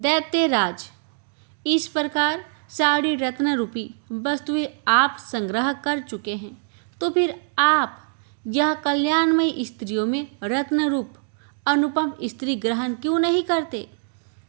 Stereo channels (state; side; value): silent; left; digital silence